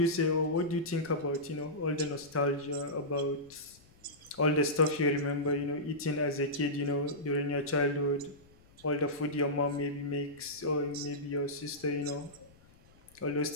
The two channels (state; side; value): noise; left; rumble, 27 dB below the sound